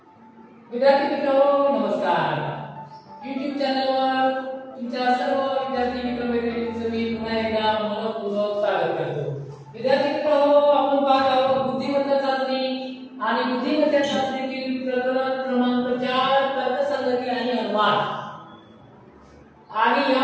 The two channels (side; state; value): both; identical; correlation 1.00